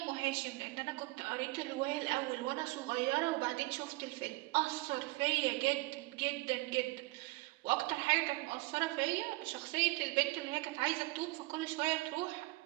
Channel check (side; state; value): left; quieter; 21.8 dB